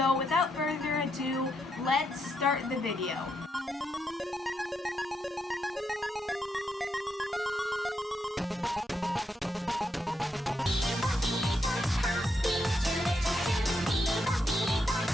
without further ado, let's start the video.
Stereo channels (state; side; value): normal; both; correlation 0.80